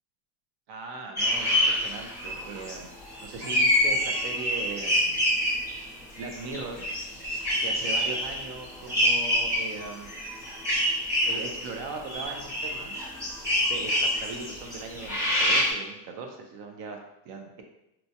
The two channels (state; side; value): normal; both; correlation 0.04